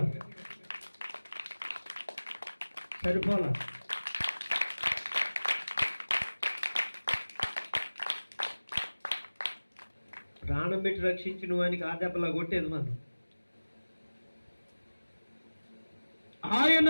సరిపోలా. ప్రాణం పెట్టి రక్షించిన వానికి ఆ దెబ్బలా కొట్టేది మనం. ఆయన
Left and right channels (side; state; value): both; inverted; correlation -1.00